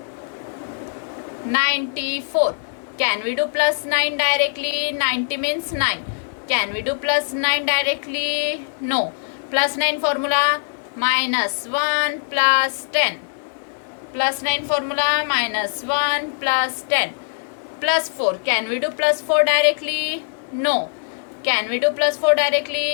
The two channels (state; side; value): silent; right; digital silence